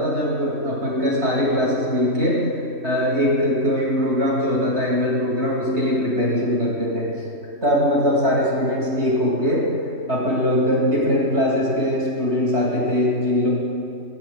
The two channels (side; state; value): left; late; 3.1 ms